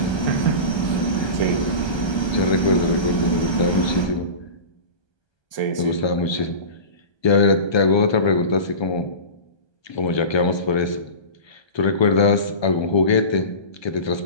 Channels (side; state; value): right; late; 1.3 ms